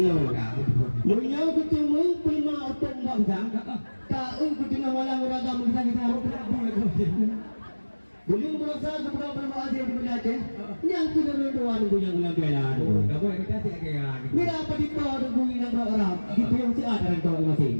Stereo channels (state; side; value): inverted; both; correlation -1.00